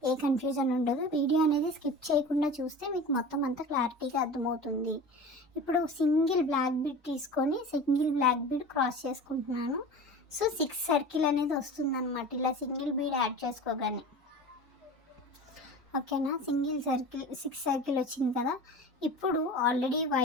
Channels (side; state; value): both; normal; correlation 0.35